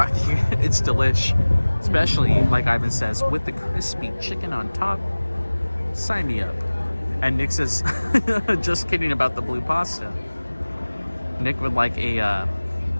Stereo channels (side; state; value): both; inverted; correlation -1.00